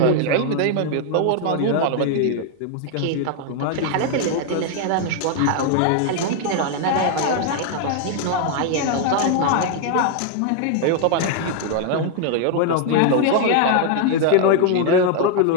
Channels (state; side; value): different; both; correlation 0.00